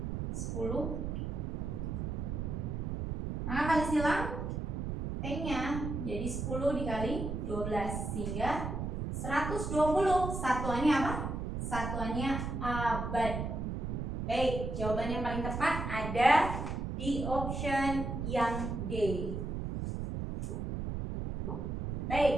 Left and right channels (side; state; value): right; noise; rumble, 3 dB below the sound